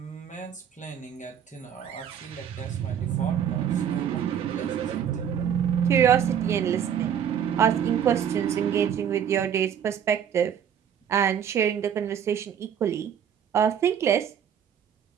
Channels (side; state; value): left; quieter; 8.6 dB